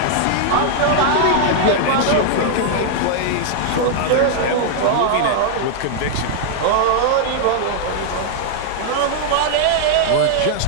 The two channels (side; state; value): both; different; correlation -0.01